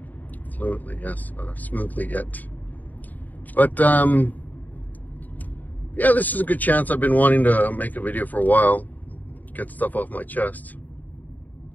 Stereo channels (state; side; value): late; right; 0.082 ms